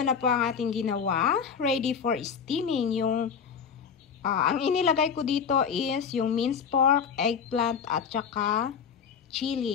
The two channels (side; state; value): right; quieter; 6.8 dB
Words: po ang ating ginawa. Ready for steaming. Ang inilagay ko dito is yung minced pork, eggplant, at saka